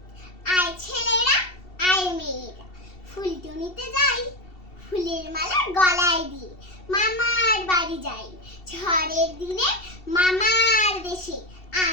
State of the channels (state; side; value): late; right; 2.7 ms